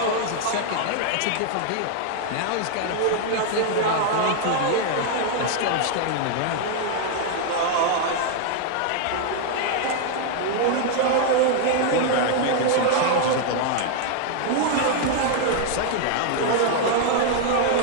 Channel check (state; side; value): different; both; correlation 0.00